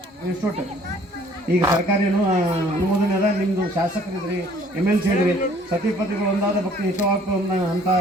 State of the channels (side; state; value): both; normal; correlation 0.57